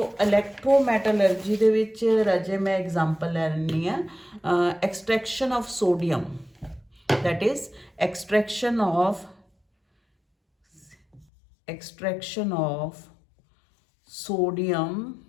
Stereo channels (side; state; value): right; drops out; at 11.2 s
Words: ਇਲੈਕਟ੍ਰੋਮੈਟਲਰਜੀ ਦੇ ਵਿੱਚ ਰਾਜੇ ਮੈਂ ਐਗਜ਼ਾਮਪਲ ਲੈ ਲੈਂਦੀ ਹਾਂ extraction of sodium, that is extraction of sodium